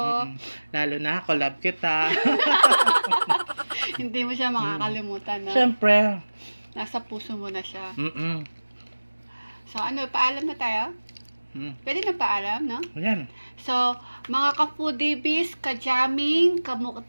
Lalo na ako, love kita. Hindi mo siya makakalimutan, no? Siyempre. Nasa puso mo na siya. Mm-mm. So, paalam na tayo? Pwede na paalam, no? Ayan. So, mga ka-foodies, ka-jamming,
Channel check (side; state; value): both; inverted; correlation -1.00